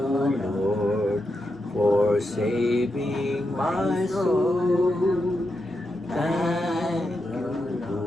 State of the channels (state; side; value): normal; both; correlation 0.86